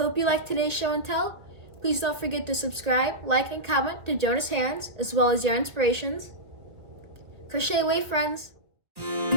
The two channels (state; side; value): late; left; 1.8 ms